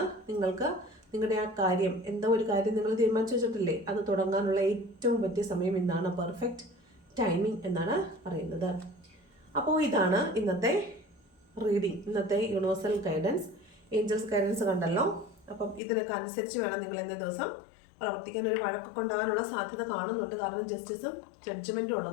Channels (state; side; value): drops out; right; at 15.8 s